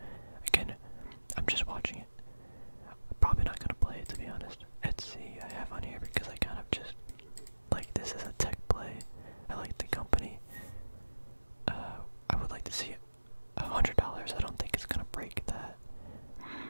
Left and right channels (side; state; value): both; inverted; correlation -1.00